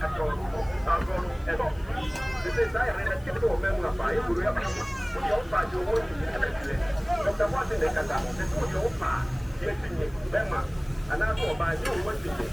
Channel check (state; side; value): noise; left; hiss, 28 dB below the sound